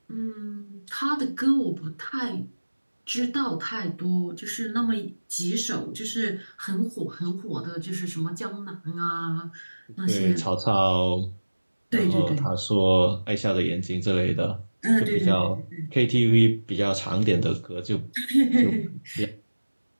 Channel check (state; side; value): inverted; both; correlation -1.00